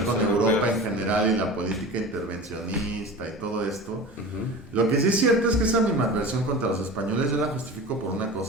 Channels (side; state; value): both; normal; correlation 0.34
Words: con sí, Europa no, en general y la política intervencionista y todo esto. Ujú. Lo que sí es cierto es que esa animadversión contra los españoles yo la justifico por una